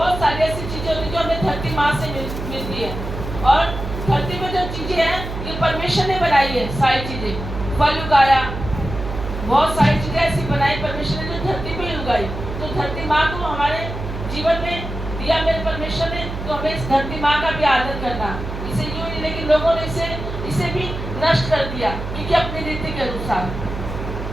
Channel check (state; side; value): noise; right; hum, 7 dB below the sound